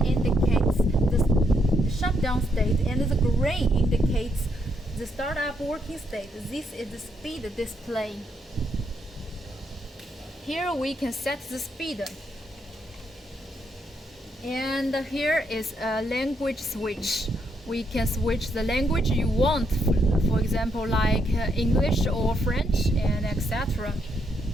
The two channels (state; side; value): normal; both; correlation 0.76